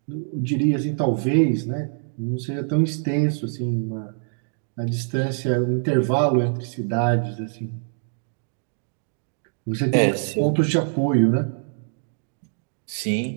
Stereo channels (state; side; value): silent; left; digital silence